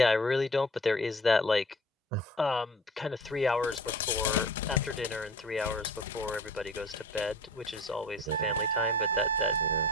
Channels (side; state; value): both; normal; correlation 0.43